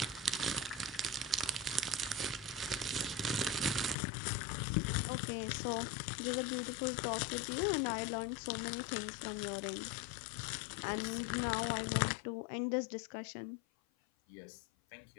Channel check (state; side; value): drops out; right; at 4.0 s